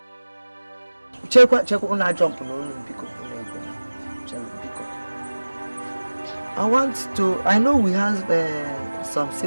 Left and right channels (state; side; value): inverted; both; correlation -1.00